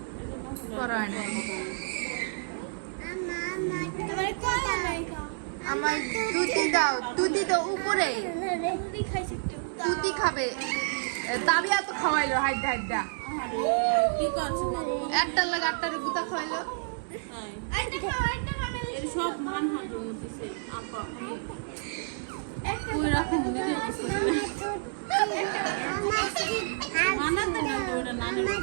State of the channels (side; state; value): left; silent; digital silence